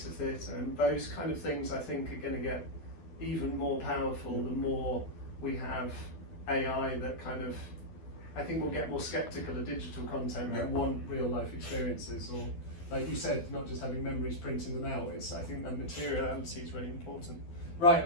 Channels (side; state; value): right; late; 12 ms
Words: of theatre, and those kind of things I think are going to get even more powerful the more we have AI that kind of, I think we'll get more skeptical of digital content and want real life experiences, or like you said, not just having memories, printing them out. It's, I think that materiality is really important. Right,